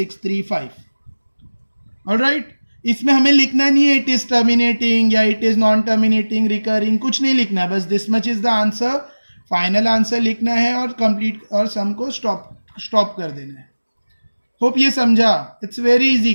Alright, इसमें हमें लिखना नहीं है इट इज टर्मिनेटिंग या it is non terminating, recurring, कुछ नहीं लिखना है, बस this much is the answer, final answer लिखना है और कंप्लीट, और सम को स्टॉप कर देना है। होप ये समझा, इट्स वेरी इजी,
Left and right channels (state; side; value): inverted; both; correlation -1.00